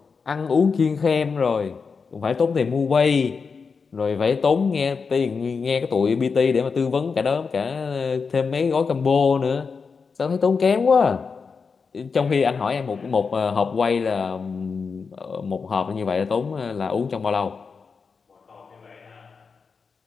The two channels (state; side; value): quieter; right; 5.2 dB